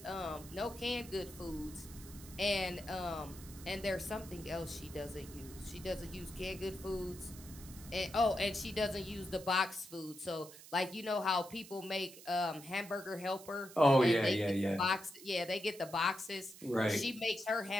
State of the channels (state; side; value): noise; right; hiss, 17 dB below the sound